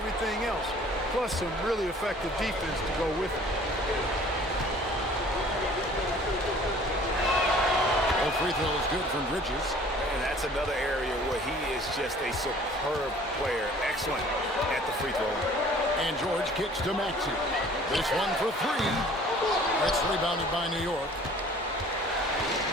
else, plus some really effective defense to go with it. Well, free throw is good from Bridges. And that's another area where he is just a superb player. Excellent at the free throw. And George kicks to Maxey. This one for 3. It's rebounded by New York.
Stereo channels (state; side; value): normal; both; correlation 0.51